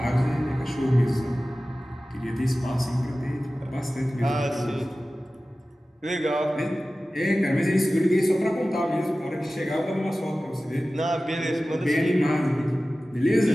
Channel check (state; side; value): normal; both; correlation 0.96